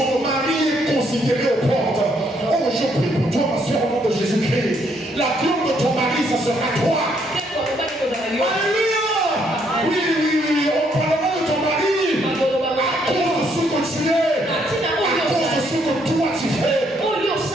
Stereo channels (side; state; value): both; normal; correlation 0.71